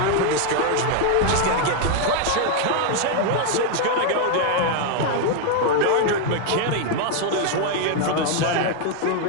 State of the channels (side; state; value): both; different; correlation 0.00